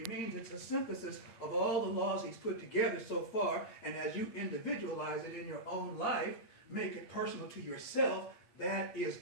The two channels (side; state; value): right; late; 8.7 ms